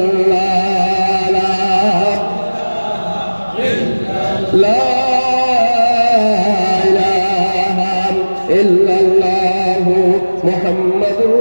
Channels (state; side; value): inverted; both; correlation -1.00